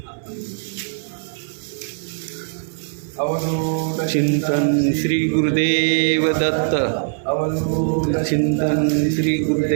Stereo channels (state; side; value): silent; left; digital silence